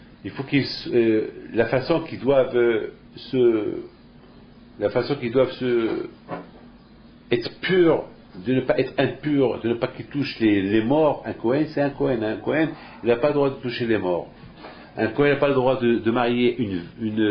Il faut la façon qu'ils doivent être purs, de ne pas être impurs, de ne pas qu'ils touchent les morts. Un Kohen, c'est un Kohen. Un Kohen, il n'a pas le droit de toucher les morts. Un Kohen n'a pas le droit de marier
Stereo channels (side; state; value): both; identical; correlation 1.00